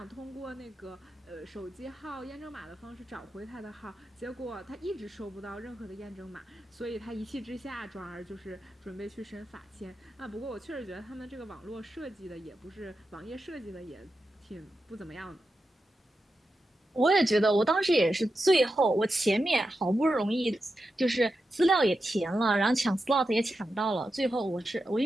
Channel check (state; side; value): normal; both; correlation 0.89